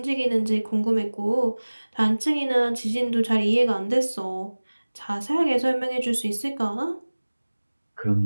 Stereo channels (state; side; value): inverted; both; correlation -1.00